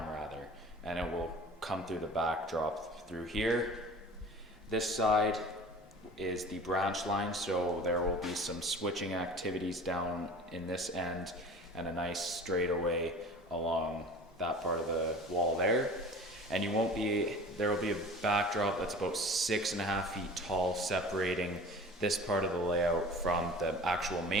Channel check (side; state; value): both; normal; correlation 0.42